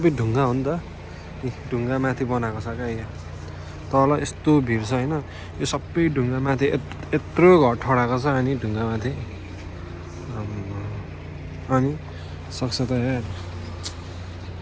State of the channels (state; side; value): identical; both; correlation 1.00